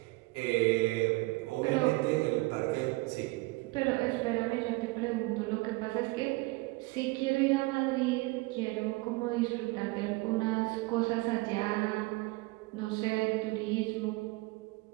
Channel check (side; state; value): left; quieter; 23.3 dB